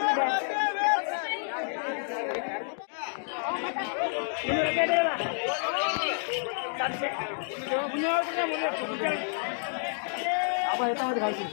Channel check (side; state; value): right; silent; 57 dB below the other